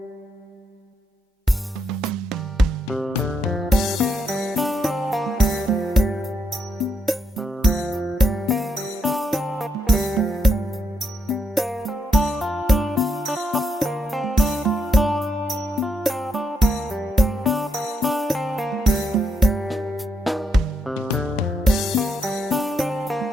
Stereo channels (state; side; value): normal; both; correlation 0.79